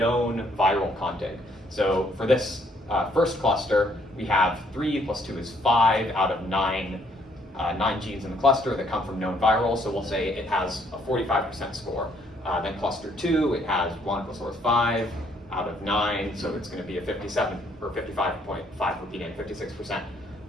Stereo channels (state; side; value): normal; both; correlation 0.67